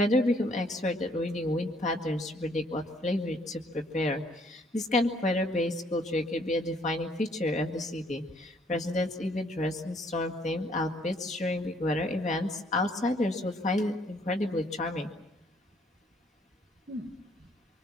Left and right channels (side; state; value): both; normal; correlation 0.65